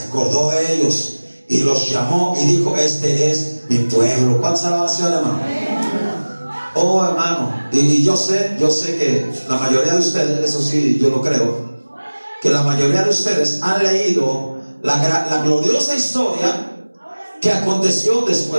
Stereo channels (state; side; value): inverted; both; correlation -1.00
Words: acordó de ellos y los llamó y dijo: este es mi pueblo. ¿Cuántas alabanzas, hermano? Oh, hermano, y yo sé que la mayoría de ustedes, eso sí, yo lo creo, que la mayoría de ustedes han leído la gloriosa historia que aconteció